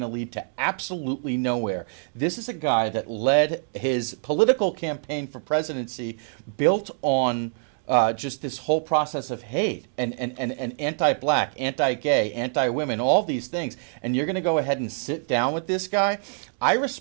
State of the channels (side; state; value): left; silent; digital silence